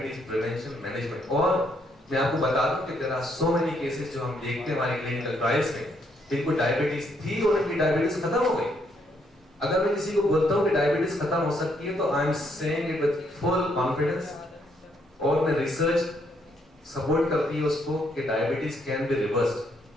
prevention management। और मैं आपको बता दूं कि there are so many cases जो हम देखते हैं हमारे clinical trials में, जिनको डायबिटीज थी और उनकी डायबिटीज खत्म हो गई। अगर मैं किसी को बोलता हूँ कि डायबिटीज खत्म हो सकती है, तो I am saying it with full confidence, और मैं रिसर्च सपोर्ट करती है उसको कि डायबिटीज कैन बी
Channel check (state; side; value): normal; both; correlation 0.73